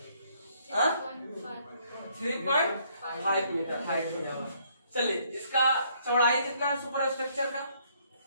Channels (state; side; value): inverted; both; correlation -0.67